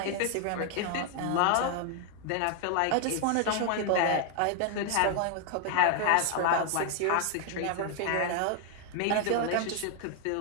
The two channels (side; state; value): both; different; correlation 0.00